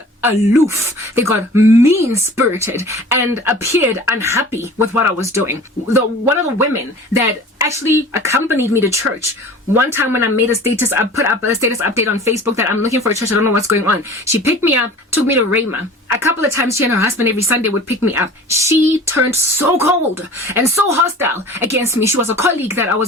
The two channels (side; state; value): both; normal; correlation 0.42